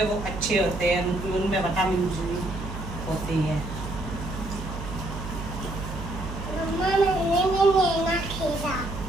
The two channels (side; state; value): right; noise; hum, 8 dB below the sound